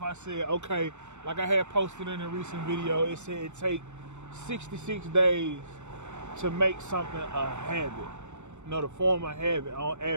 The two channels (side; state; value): left; late; 0.83 ms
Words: I said, okay, like I had posted in a recent video, it said it take 66 days to make something a habit, to form a habit on